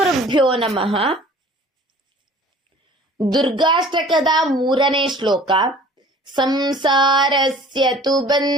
ನಮಃ. ದುರ್ಗಾಷ್ಟಕದ 3ನೇ ಶ್ಲೋಕ. ಸಂಸಾರಸ್ಯ ತು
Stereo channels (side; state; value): both; normal; correlation 0.48